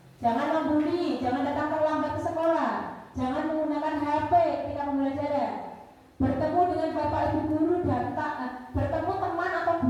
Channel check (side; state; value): both; identical; correlation 1.00